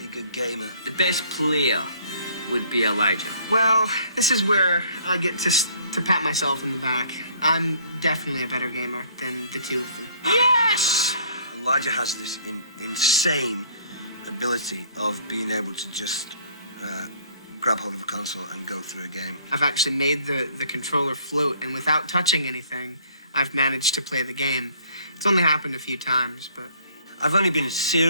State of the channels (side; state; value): both; inverted; correlation -0.58